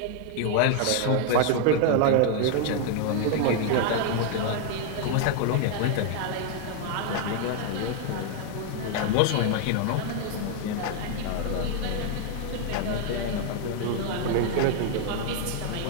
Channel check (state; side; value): different; both; correlation 0.00